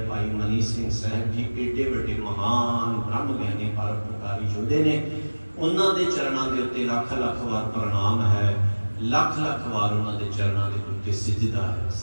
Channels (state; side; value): inverted; both; correlation -1.00